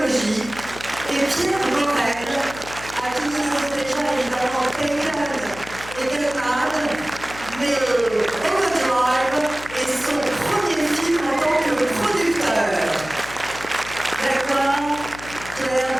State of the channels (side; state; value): left; noise; hum, 15 dB below the sound